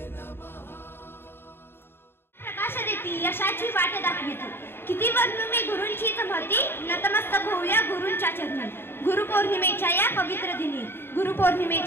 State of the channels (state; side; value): late; right; 0.11 ms